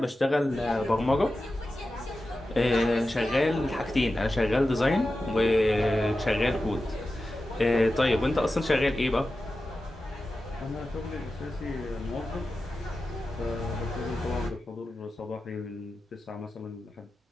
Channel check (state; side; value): normal; both; correlation 0.93